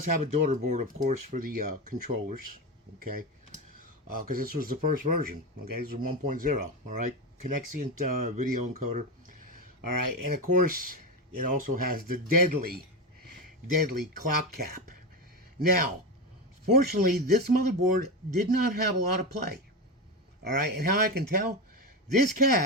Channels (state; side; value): normal; both; correlation 0.17